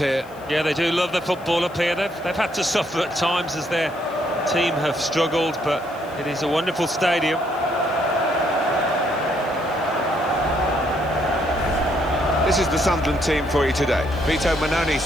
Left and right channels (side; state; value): left; noise; hiss, 26 dB below the sound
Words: Yeah, they do love the football up here. They've had to suffer at times as their team have struggled, but it is a wonderful stadium. This is the Sunderland team for you today. Vito Manoni